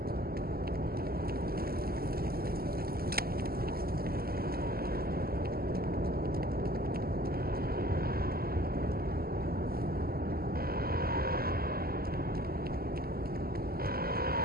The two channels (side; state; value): left; late; 0.44 ms